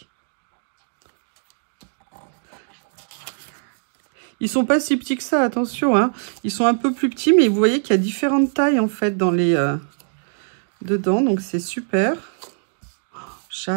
Ils sont pas si petits que ça, attention, hein. Ils sont un peu plus petits, mais vous voyez qu'il y a différentes tailles, en fait, dans les... dedans, donc c'est super.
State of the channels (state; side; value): silent; left; digital silence